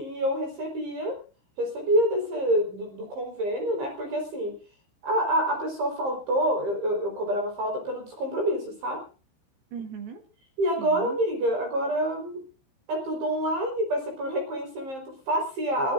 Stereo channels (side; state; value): left; late; 15 ms